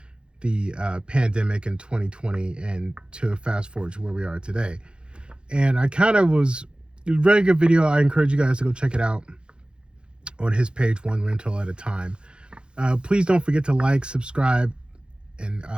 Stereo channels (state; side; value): late; left; 0.053 ms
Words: the pandemic in 2020 and to fast forward to where we are today. And it was a very good video. I encourage you guys to go check it out on his page, One Rental at a Time. Please don't forget to like, subscribe, and